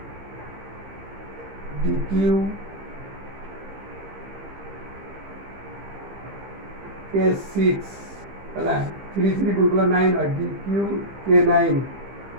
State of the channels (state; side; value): late; left; 15 ms